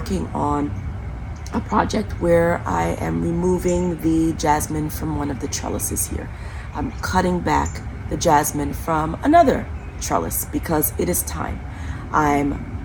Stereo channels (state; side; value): identical; both; correlation 1.00